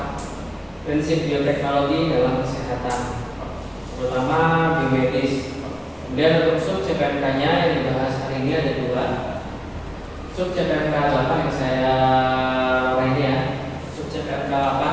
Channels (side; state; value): both; identical; correlation 1.00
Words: prinsip bioteknologi dalam kesehatan, terutama biomedis. Kemudian untuk sub CPNK-nya yang dibahas hari ini ada dua. Sub CPNK 8 yang saya ini ya. Sub CPNK